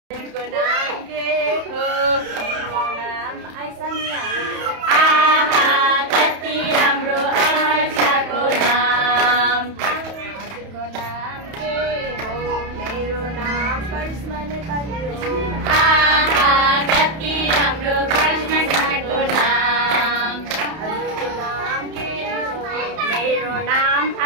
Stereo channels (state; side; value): late; left; 31 ms